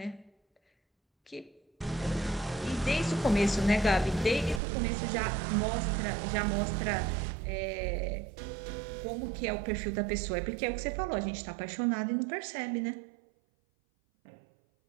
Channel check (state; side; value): drops out; left; at 4.6 s